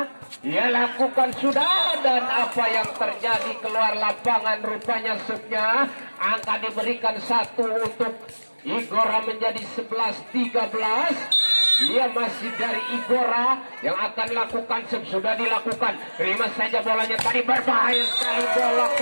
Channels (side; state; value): both; inverted; correlation -1.00